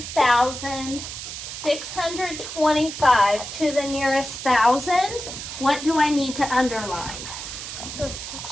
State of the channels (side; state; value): right; noise; hiss, 8 dB below the sound